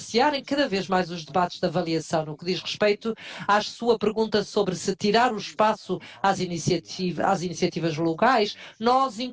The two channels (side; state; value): both; identical; correlation 1.00